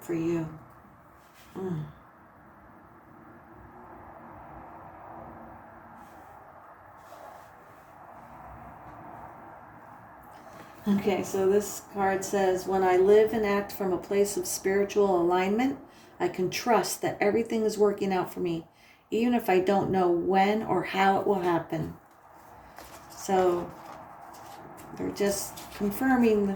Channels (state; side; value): identical; both; correlation 1.00